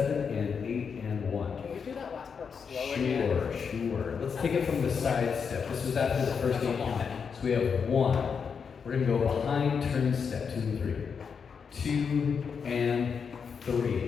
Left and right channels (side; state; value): right; quieter; 6.2 dB